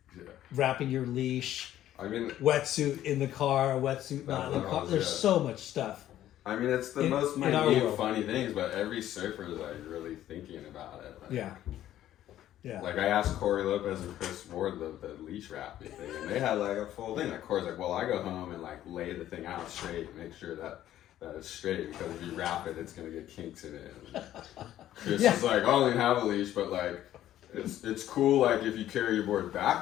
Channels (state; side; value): quieter; right; 12.6 dB